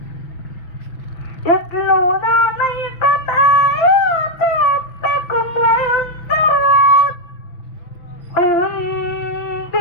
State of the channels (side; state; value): right; late; 6.1 ms